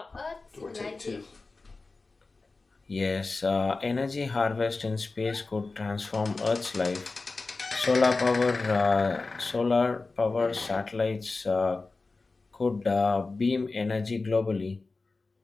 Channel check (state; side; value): quieter; right; 3.7 dB